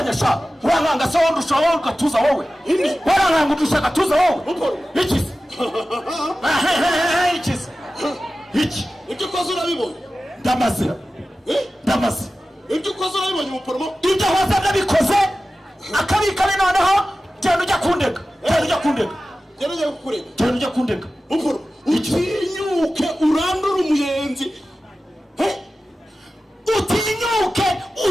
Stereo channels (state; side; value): normal; both; correlation 0.95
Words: sha wanganga se wondusha wowe ugatuza wowe waranganga udusha gatuza wowe iki iki ibyo ukoze urabibonye ndamaze ibyo ukoze urabibonye muporomo ibyo waza nabikoze akabikane noneho genda ujya kundega genda ujya kundega muporomo utinyuke urandura umuyenzi utinyuke